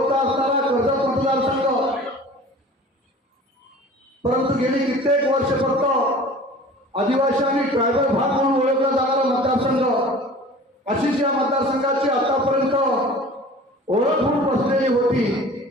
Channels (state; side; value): normal; both; correlation 0.43